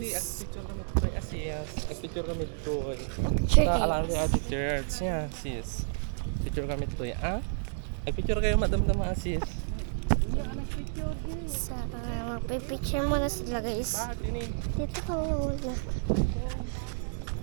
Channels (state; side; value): silent; left; digital silence